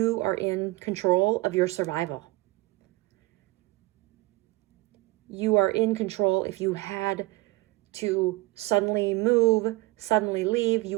are in control of your survival. You are in control. If you had to suddenly move, suddenly leave, you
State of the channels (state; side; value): quieter; left; 20.8 dB